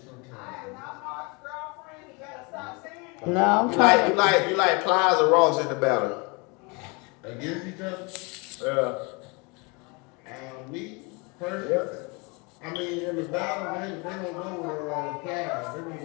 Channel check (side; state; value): right; quieter; 29.3 dB